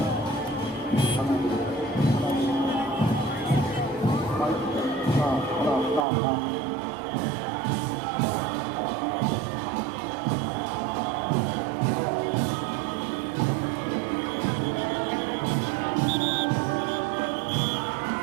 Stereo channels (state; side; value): drops out; left; at 6.1 s